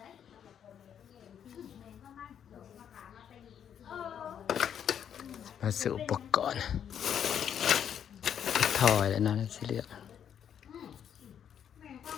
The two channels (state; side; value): quieter; right; 8.8 dB